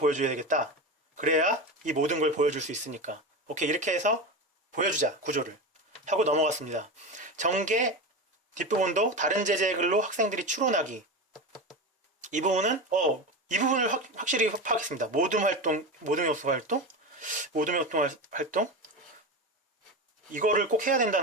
되겠다. 그래야 이 모든 걸 보여줄 수 있으니까. 오케이, 이렇게 해서 보여주자. 구조를 하고 넘어갔습니다. 전개 뒷부분도 다른 제재의 글로 학생들이 추론하기. 이 부분은 이 부분을 확실히 파악했습니다. 모둠 요소 활동 이거를 꼭 해야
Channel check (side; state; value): both; normal; correlation 0.22